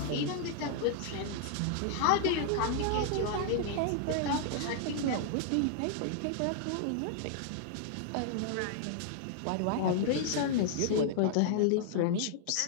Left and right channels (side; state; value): both; different; correlation -0.01